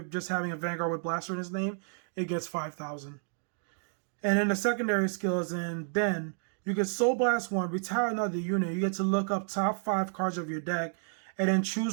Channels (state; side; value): silent; left; digital silence